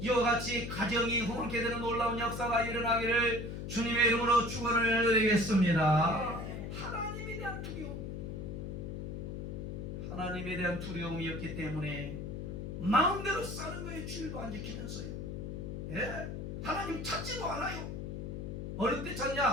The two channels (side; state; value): left; noise; hum, 6 dB below the sound